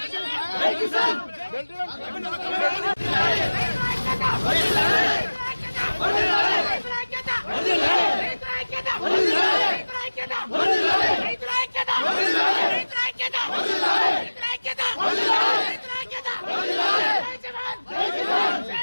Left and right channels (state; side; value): inverted; both; correlation -1.00